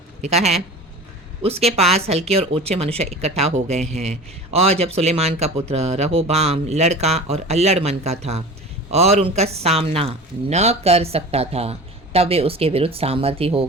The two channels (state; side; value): normal; both; correlation 0.36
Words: लिखा है, उसके पास हल्के और ऊंचे मनुष्य इकट्ठा हो गए हैं, और जब सुलेमान का पुत्र रहोबाम लड़का और अल्लड़ मन का था और उनका सामना न कर सकता था, तब वे उसके विरुद्ध सामर्थी हो